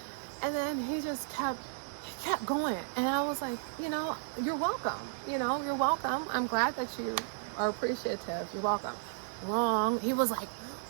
and then he just kept going, and I was like, you know, you're welcome. I'm glad that you are appreciative. You're welcome. Wrong. He was like,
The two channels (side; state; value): left; silent; digital silence